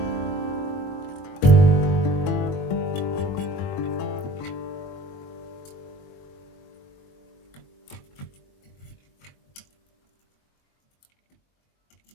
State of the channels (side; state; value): right; late; 22 ms